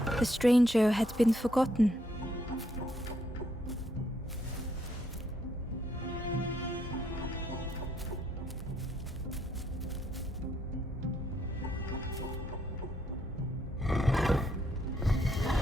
The stranger had been forgotten.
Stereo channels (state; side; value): normal; both; correlation 0.73